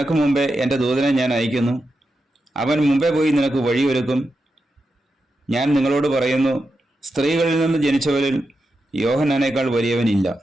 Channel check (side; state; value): both; normal; correlation 0.88